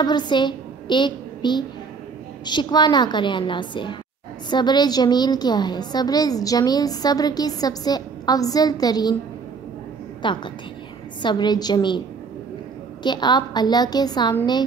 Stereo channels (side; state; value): left; quieter; 5.2 dB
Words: سے ایک بھی شکوہ نہ کریں اللہ سے۔ صبر جمیل کیا ہے؟ صبر جمیل صبر کی سب سے افضل ترین طاقت ہے۔ صبر جمیل کہ آپ اللہ کے سامنے